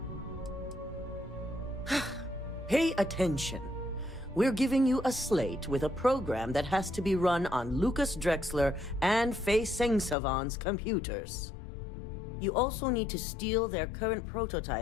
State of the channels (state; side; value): drops out; right; at 10.2 s